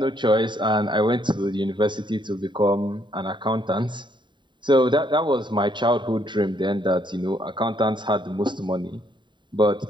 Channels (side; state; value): left; late; 0.23 ms